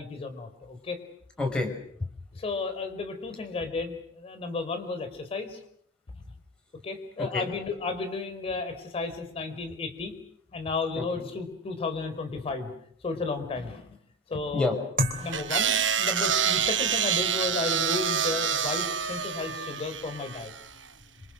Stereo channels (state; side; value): normal; both; correlation 0.22